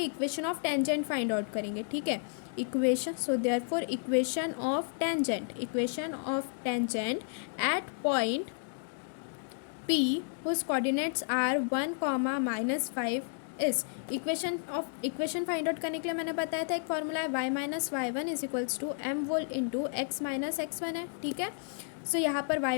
equation of tangent find out करेंगे, ठीक है। Equation, so therefore equation of tangent at point P whose coordinates are 1, -5 इस इक्वेशन फाइंड आउट करने के लिए मैंने बताया था एक फॉर्मूला है y minus y one is equals to m whole into x minus x one है, ठीक है। सो यहाँ पर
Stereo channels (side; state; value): right; silent; 56 dB below the other